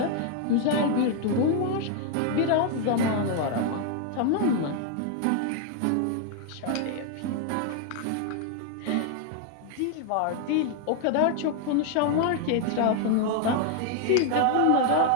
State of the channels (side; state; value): both; different; correlation 0.00